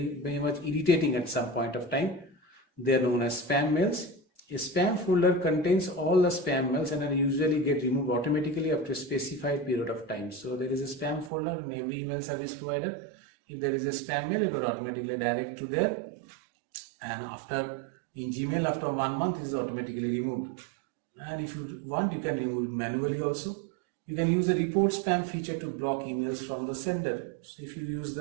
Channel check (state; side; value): drops out; left; at 11.3 s